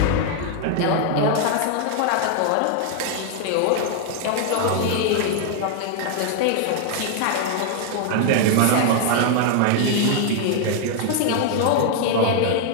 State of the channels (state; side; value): different; both; correlation 0.00